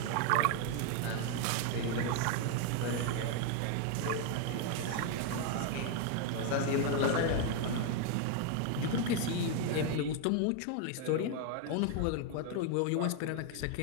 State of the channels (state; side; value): different; both; correlation 0.01